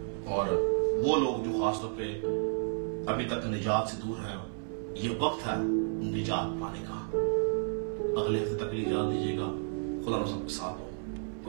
اور وہ لوگ جو خاص طور پہ ابھی تک نجات سے دور ہیں، یہ وقت ہے نجات پانے کا۔ اگلے ہفتے تک کے لیے اجازت دیجیے گا۔ خدا آپ سب کے ساتھ ہو۔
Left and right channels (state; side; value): silent; left; 57 dB below the other